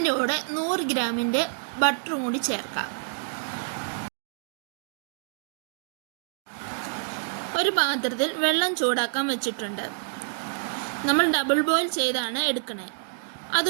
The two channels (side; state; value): left; silent; digital silence